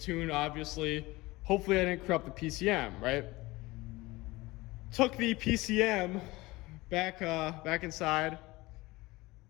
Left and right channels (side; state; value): right; quieter; 20.8 dB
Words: obviously. Hopefully I didn't corrupt the PCM, right? Took the PCM back inside,